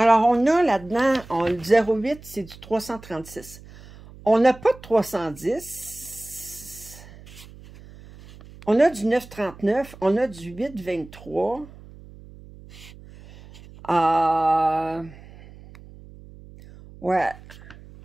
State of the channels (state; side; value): noise; right; hum, 20 dB below the sound